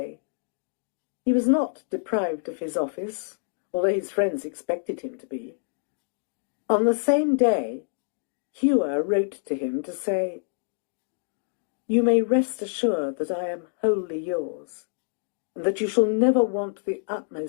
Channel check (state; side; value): silent; right; digital silence